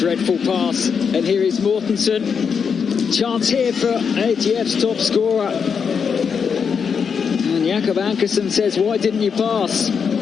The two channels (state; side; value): quieter; right; 6.4 dB